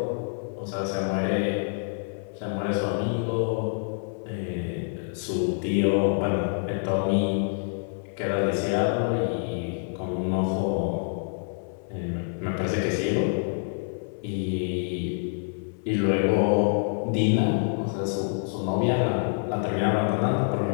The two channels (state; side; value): silent; right; 60 dB below the other